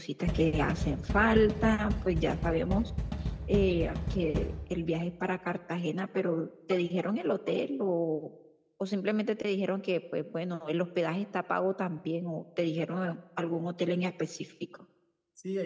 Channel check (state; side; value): identical; both; correlation 1.00